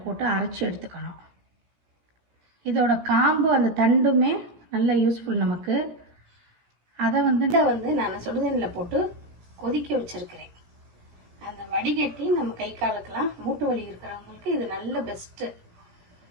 போட்டு அரைச்சி எடுத்துக்கணும். இதோட காம்பு அந்த தண்டுமே நல்ல யூஸ்ஃபுல் நமக்கு. அதை வந்து நான் சுடுதண்ணில் போட்டு கொதிக்க வச்சுருக்கிறேன். அந்த வடிகட்டி நம்ம கை காலுக்கெல்லாம் மூட்டு வலி இருக்கிறவங்களுக்கு இது நல்ல பெஸ்ட்டு.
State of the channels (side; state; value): left; late; 17 ms